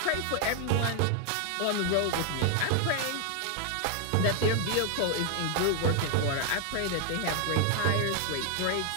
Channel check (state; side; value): different; both; correlation 0.00